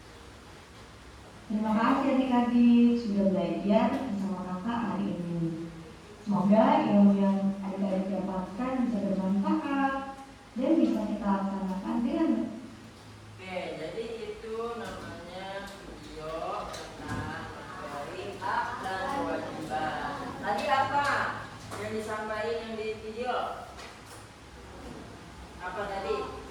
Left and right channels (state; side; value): identical; both; correlation 1.00